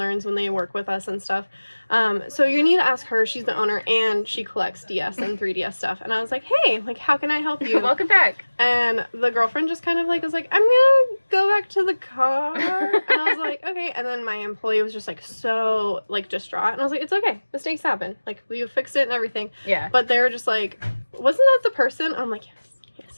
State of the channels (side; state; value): both; inverted; correlation -1.00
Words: when they work with us and stuff. So you need to ask her. She's the owner and she collects DS and 3DS stuff. And I was like, hey, like, how can I help you? Welcome back. And the girlfriend just kind of like was like, I'm gonna go back to the car. And I was like, okay. And then my employee was just like so like distraught. And I was like, it's okay. Mistakes happen. Like, we fixed it and everything. Yeah. But they were just like, wasn't that the person? I'm like,